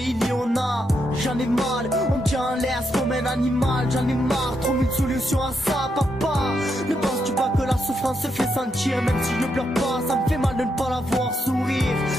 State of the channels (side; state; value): both; normal; correlation 0.81